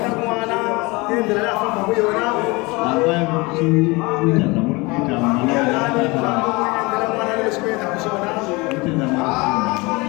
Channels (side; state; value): right; quieter; 24.8 dB